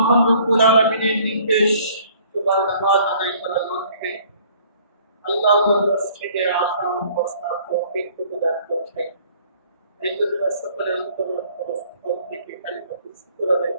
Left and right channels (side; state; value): both; inverted; correlation -0.57